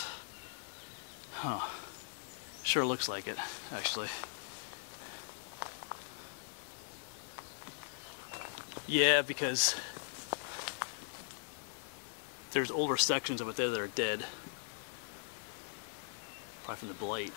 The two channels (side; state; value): right; silent; digital silence